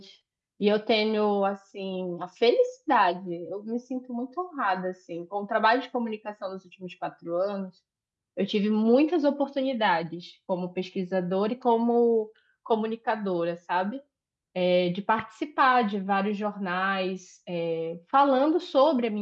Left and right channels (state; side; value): identical; both; correlation 1.00